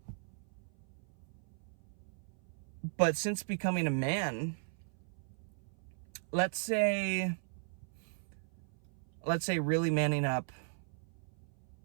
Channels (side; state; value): left; silent; 53 dB below the other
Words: But since becoming a man, let's say really manning up,